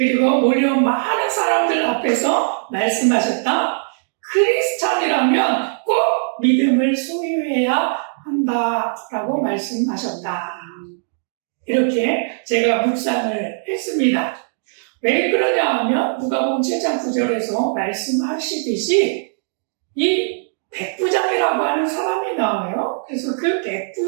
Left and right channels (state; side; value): silent; left; digital silence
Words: 몰려온 많은 사람들 앞에서 말씀하셨다. 크리스찬이라면 꼭 믿음을 소유해야 한다라고 말씀하셨다. 이렇게 제가 묵상을 했습니다. 왜 그러냐 하면 누가복음 7장 9절에서 말씀하시듯이 이 백부장이라고 하는 사람이 나와요. 그래서 그